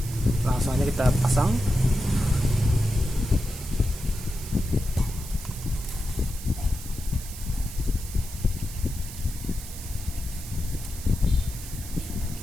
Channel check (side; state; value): right; noise; hiss, 13 dB below the sound